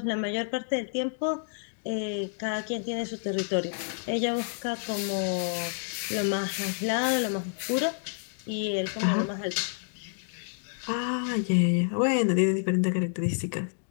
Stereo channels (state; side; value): silent; right; digital silence